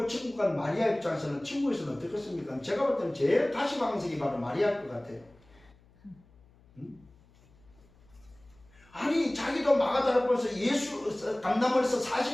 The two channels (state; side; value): noise; left; hum, 29 dB below the sound